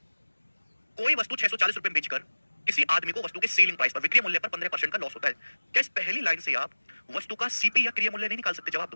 कोई वस्तु 640 रुपए में बेचकर किसी आदमी को वस्तु के सेलिंग प्राइस पर, विक्रय मूल्य पर 15% का लॉस होता है। क्या इस पहली लाइन से आप वस्तु का सीपी या क्रिय मूल्य नहीं निकाल सकते? जवाब दो,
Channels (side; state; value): both; inverted; correlation -1.00